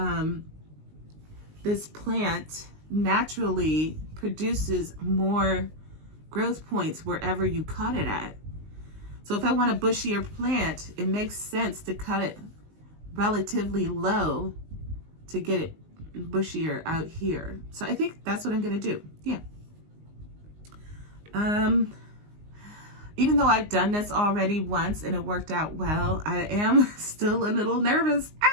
this plant naturally produces more growth points wherever you cut it at. So if I want a bushier plant, it makes sense to cut it relatively low to get it bushier out here. So I think that's what I'm going to do. Yeah. Even though I've done this already once and it worked out well, I am still a little nervous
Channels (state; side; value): late; left; 19 ms